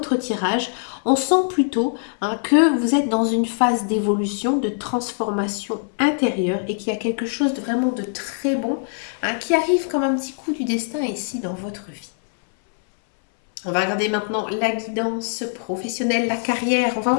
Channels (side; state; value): right; silent; 64 dB below the other